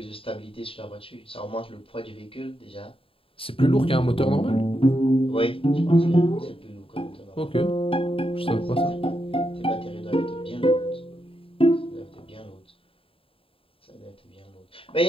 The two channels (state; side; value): late; right; 0.27 ms